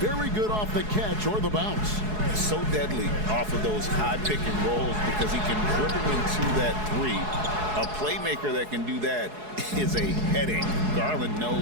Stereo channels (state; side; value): late; left; 4.7 ms